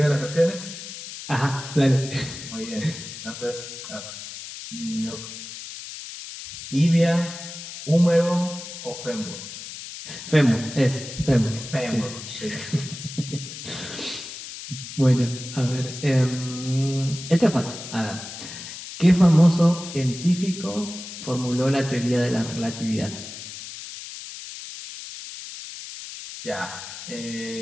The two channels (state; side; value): noise; left; hiss, 11 dB below the sound